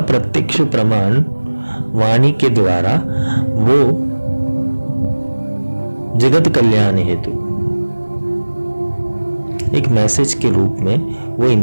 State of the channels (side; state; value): both; inverted; correlation -1.00